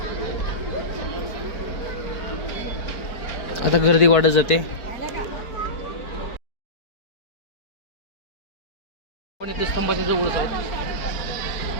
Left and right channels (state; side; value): late; right; 4.4 ms